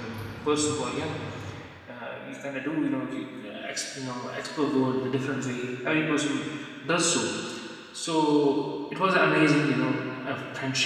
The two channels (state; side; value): identical; both; correlation 1.00